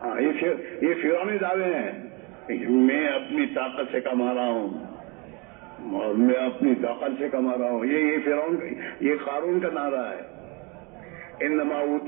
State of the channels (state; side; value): quieter; left; 29.4 dB